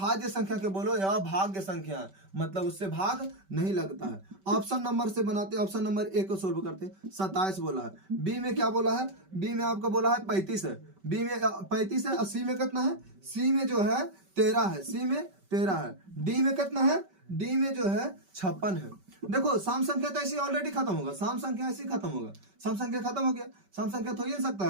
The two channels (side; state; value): left; late; 5.2 ms